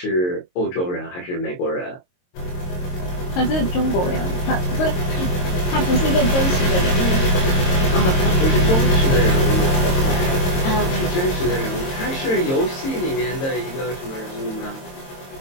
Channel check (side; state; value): right; late; 22 ms